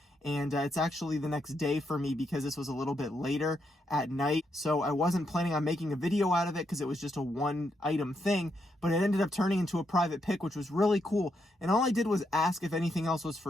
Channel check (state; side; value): normal; both; correlation 0.80